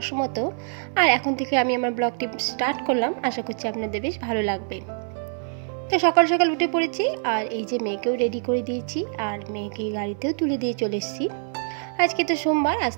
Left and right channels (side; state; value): left; silent; 62 dB below the other